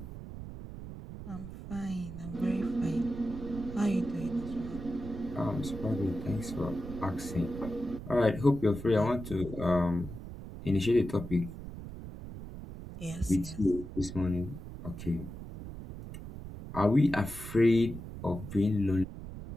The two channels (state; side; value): noise; right; rumble, 11 dB below the sound